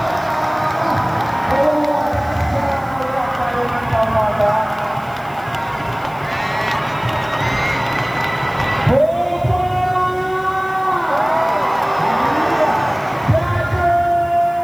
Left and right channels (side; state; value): left; noise; hiss, 26 dB below the sound